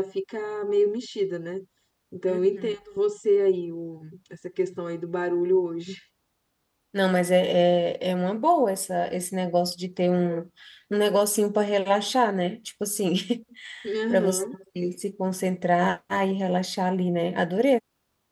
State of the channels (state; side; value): identical; both; correlation 1.00